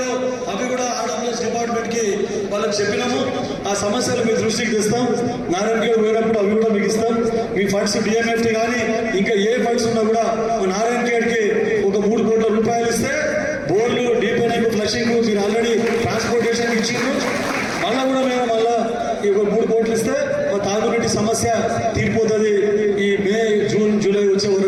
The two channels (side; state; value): both; identical; correlation 1.00